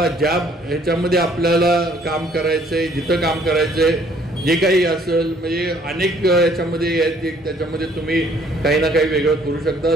ज्या ह्याच्यामध्ये आपल्याला काम करायचंय, जिथं काम करायचंय, जे काही असेल म्हणजे अनेक याच्यामध्ये त्याच्यामध्ये तुम्ही काही ना काही वेगळं करू शकता,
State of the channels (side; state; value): both; normal; correlation 0.61